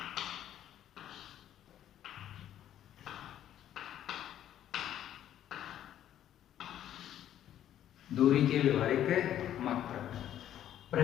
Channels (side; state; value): right; quieter; 11.3 dB